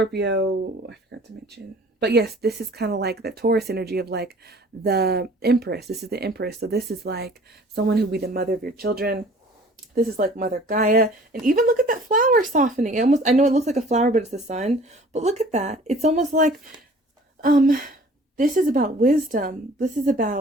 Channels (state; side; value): normal; both; correlation 0.50